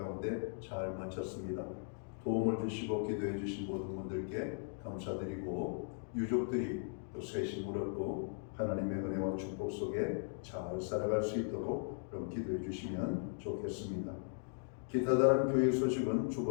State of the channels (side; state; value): right; silent; digital silence